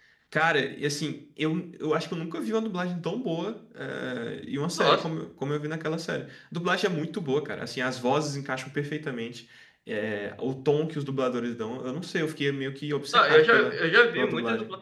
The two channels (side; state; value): both; identical; correlation 1.00